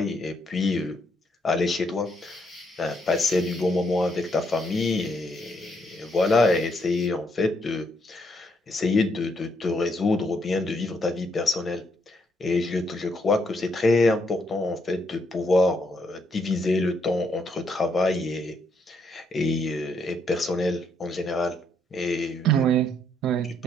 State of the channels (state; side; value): normal; both; correlation 0.74